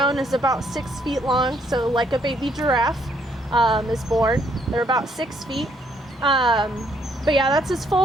is about 6 feet long. So like a baby giraffe is born. They're about 6 feet. But yeah, that's as full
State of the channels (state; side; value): normal; both; correlation 0.70